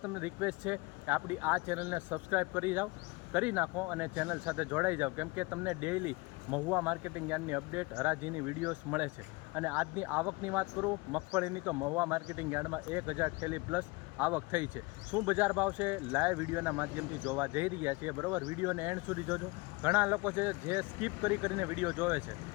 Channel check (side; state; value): right; quieter; 24.9 dB